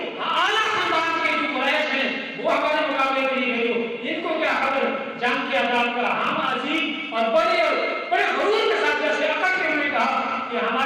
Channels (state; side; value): identical; both; correlation 1.00